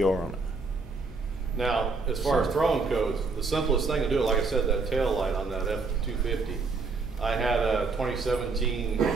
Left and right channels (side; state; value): left; quieter; 4.2 dB